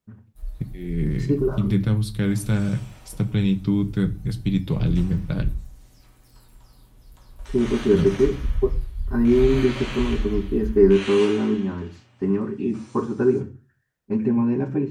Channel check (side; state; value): both; identical; correlation 1.00